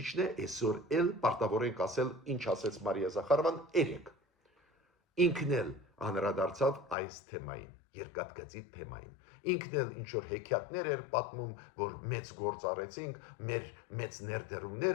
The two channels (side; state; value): right; drops out; at 7.0 s